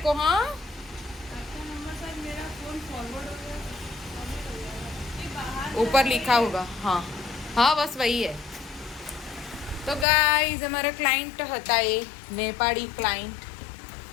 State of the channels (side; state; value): right; drops out; at 10.1 s